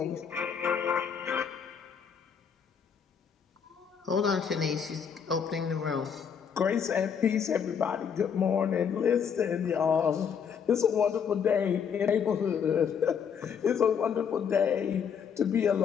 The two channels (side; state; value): right; quieter; 7.2 dB